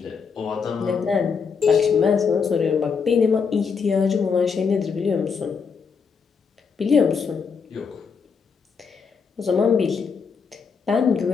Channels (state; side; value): quieter; right; 5.8 dB